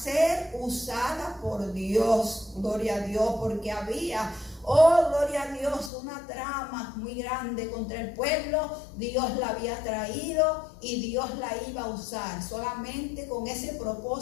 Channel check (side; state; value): right; drops out; at 5.9 s